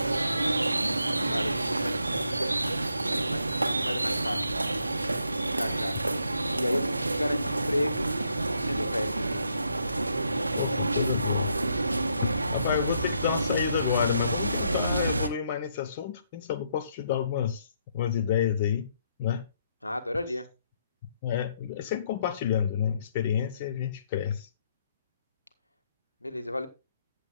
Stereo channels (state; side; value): inverted; both; correlation -0.74